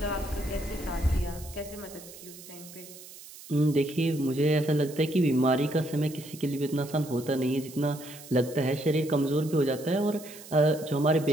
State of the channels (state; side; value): noise; right; hiss, 17 dB below the sound